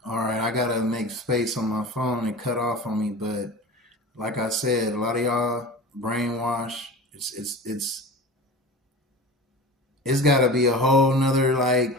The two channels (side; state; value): both; normal; correlation 0.34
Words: all right, I gotta make space on my phone. It cut off on me, but like I said, a lot of y'all brainwash. It's got to be a whole nother